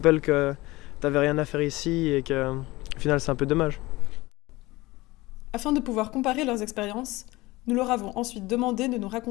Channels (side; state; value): right; quieter; 20.3 dB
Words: que t'avais rien à faire ici et que au final c'est un peu dommage. Afin de pouvoir comparer leurs expériences, nous leur avons ensuite demandé de nous